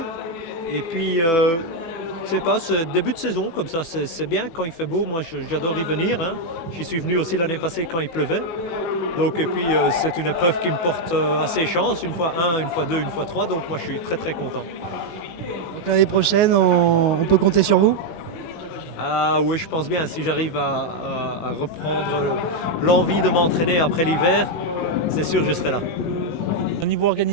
Et puis, je sais pas, ce début de saison, comme ça, c'est bien quand il fait beau. Moi, j'adore y venir. Hein. J'y suis venu aussi l'année passée quand il pleuvait. Donc, et puis, c'est une épreuve qui me porte assez chance. Une fois 1, une fois 2, une fois 3. Donc, moi, je suis très, très content. Donc l'année prochaine, on peut compter sur vous ? Ah oui, je pense bien. Si j'arrive à reprendre l'envie de m'entraîner après l'hiver, c'est sûr que je serai là. Au niveau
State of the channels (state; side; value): late; right; 18 ms